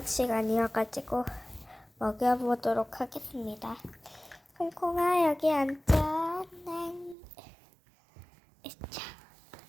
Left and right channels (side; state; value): left; drops out; at 7.2 s